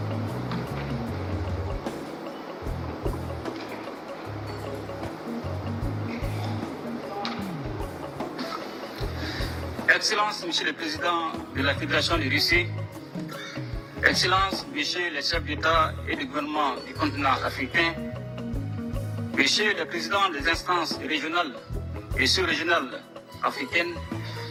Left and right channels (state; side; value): identical; both; correlation 1.00